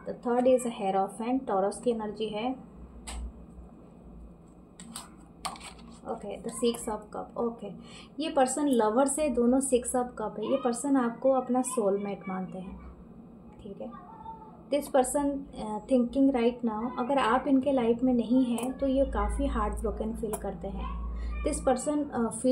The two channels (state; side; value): identical; both; correlation 1.00